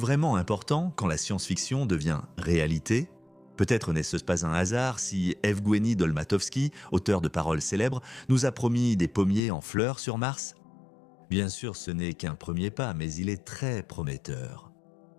important quand la science-fiction devient réalité ? Peut-être n'est-ce pas un hasard si Evgueni Dolmatovski, auteur de paroles célèbres, nous a promis des pommiers en fleurs sur Mars ? Bien sûr, ce n'est qu'un premier pas, mais il est très prometteur.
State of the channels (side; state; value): right; drops out; at 9.4 s